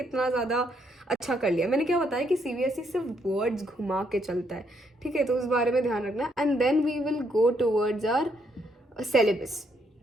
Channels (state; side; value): normal; both; correlation 0.73